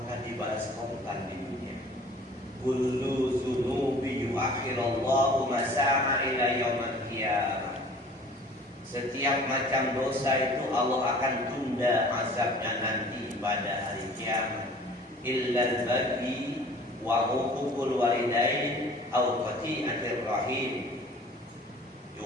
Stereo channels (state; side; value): normal; both; correlation 0.48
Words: dibalas korban di dunia. Kullu dzunubi yuakhirallahu masa'a ila yaumil qiyamah. Setiap macam dosa itu Allah akan tunda azabnya nanti pada hari kiamat. Illa al-baghi wa uququl walidain aw qati'atir rahim.